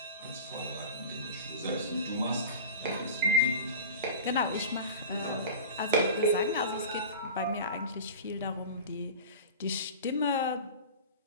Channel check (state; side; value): inverted; both; correlation -0.32